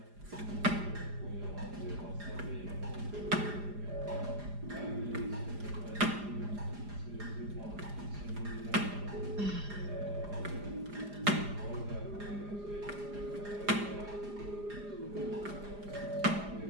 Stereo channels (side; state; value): left; late; 4.9 ms